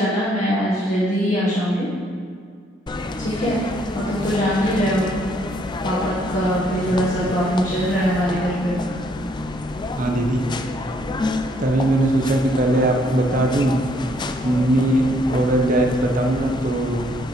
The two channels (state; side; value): normal; both; correlation 0.68